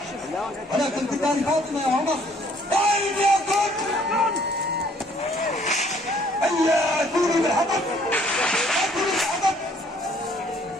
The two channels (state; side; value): normal; both; correlation 0.61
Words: ولكن بدار فاطمة يا عمر. طيب يا كون هيا ائتوني بالحطب، ائتوني بالحطب.